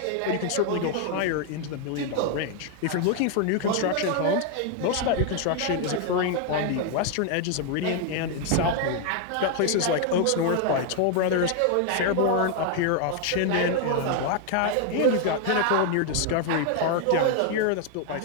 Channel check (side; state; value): both; different; correlation 0.00